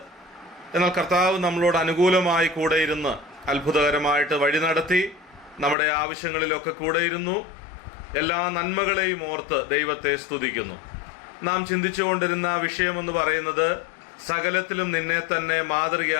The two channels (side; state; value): right; drops out; at 5.8 s